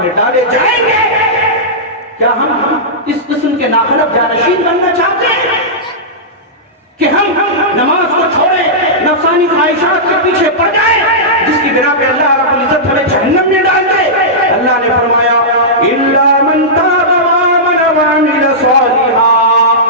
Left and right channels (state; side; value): normal; both; correlation -0.13